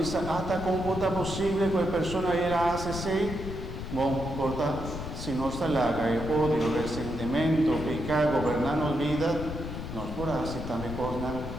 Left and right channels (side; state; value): left; noise; rumble, 7 dB below the sound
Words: hasta cómo está posible que la persona ella hace así, bueno, corta. Si no está larga el odio, resentimiento, pecado, gobernando vida, nos podrá hacer también cosas